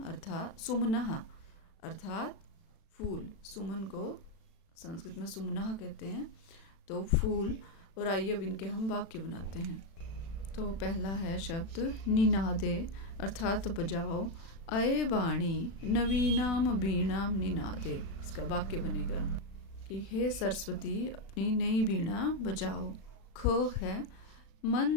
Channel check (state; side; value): late; right; 36 ms